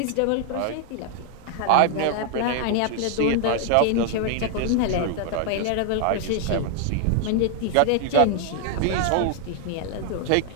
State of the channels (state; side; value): different; both; correlation 0.00